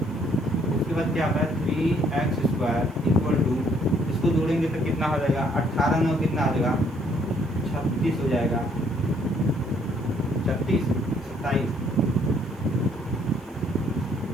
उसके बाद क्या होता है 3x² इक्वल टू, इसको जोड़ेंगे तो कितना हो जाएगा 18 9 कितना हो जाएगा 36 हो जाएगा, 36 27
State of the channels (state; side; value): noise; right; hiss, 30 dB below the sound